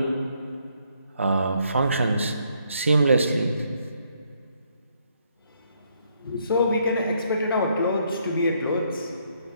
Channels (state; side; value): inverted; both; correlation -0.71